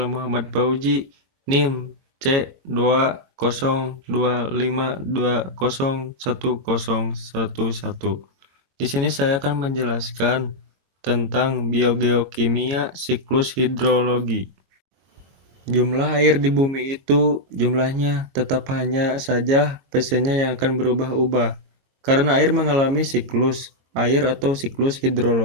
Muhammad Fauji, NIM C20252010111. Di sini saya akan menjelaskan tentang biogeokimia siklus hidrologi. Jumlah air di bumi itu jumlahnya tetap hanya saja persennya yang akan berubah-ubah karena air mengalami siklus air atau siklus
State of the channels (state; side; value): late; left; 22 ms